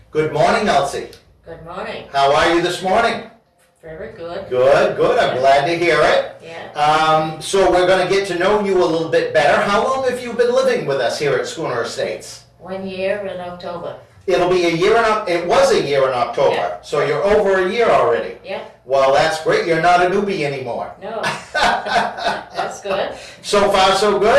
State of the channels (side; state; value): both; identical; correlation 1.00